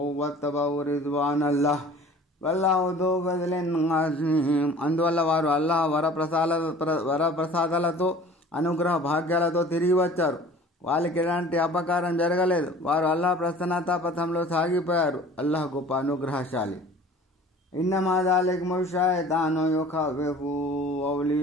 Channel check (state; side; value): normal; both; correlation 0.45